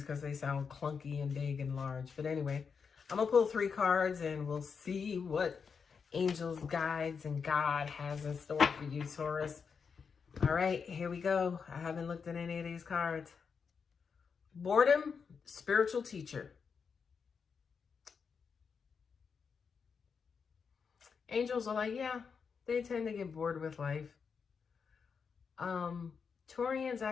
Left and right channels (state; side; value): quieter; right; 5.9 dB